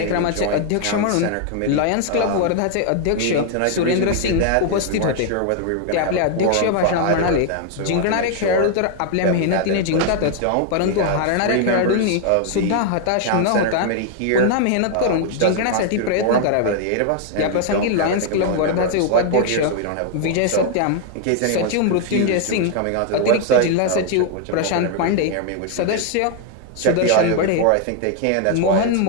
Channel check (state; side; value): different; both; correlation 0.00